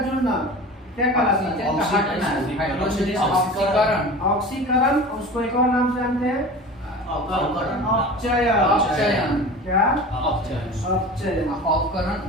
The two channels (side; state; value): both; normal; correlation 0.35